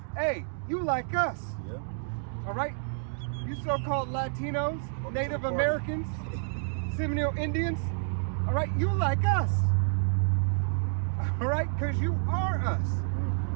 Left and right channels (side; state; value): left; silent; digital silence